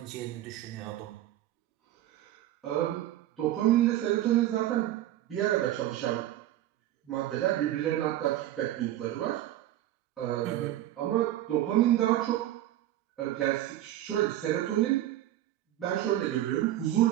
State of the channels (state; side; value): quieter; left; 13.6 dB